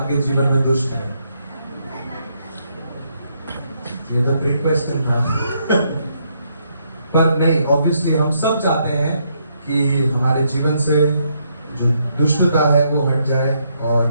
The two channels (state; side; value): inverted; both; correlation -0.75